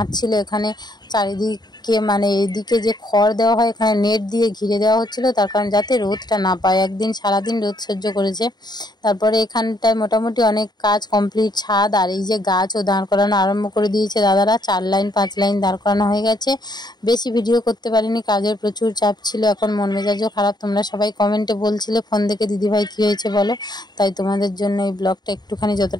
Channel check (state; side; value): late; right; 0.20 ms